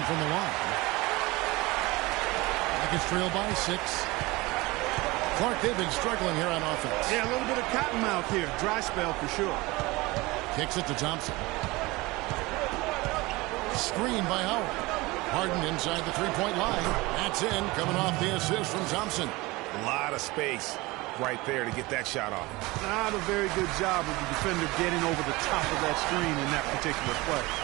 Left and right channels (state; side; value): quieter; left; 22.1 dB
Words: from the line. Rockets trail by 6. Clark, they've been struggling here on offense. Yeah, a little bit of cottonmouth here. Dry spell for sure. Kicks it to Thompson. Screen by Howard. Harden inside the three-point line. That's in, coming off the assist from Thompson. A lot of space right there to get that shot off. Not a very good job of the defender getting over the top of that screen in that particular play.